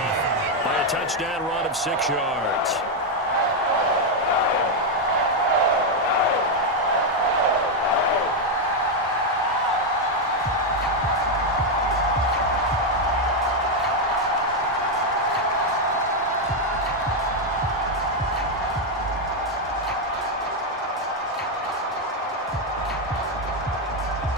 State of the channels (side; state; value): both; normal; correlation 0.03